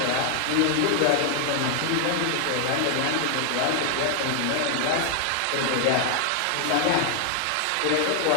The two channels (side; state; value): both; different; correlation 0.00